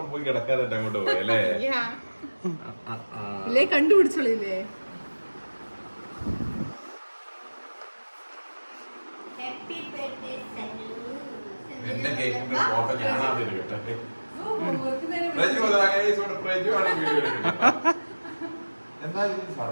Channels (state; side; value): inverted; both; correlation -1.00